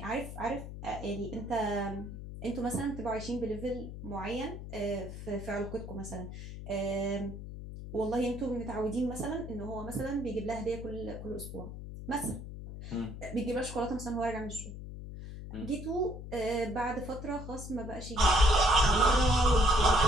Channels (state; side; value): noise; left; hum, 10 dB below the sound